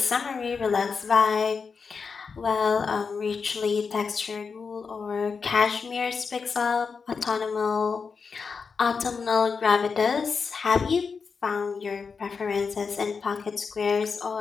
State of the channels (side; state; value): right; quieter; 5.3 dB